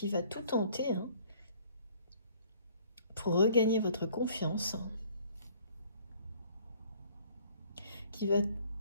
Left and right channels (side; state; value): both; inverted; correlation -0.57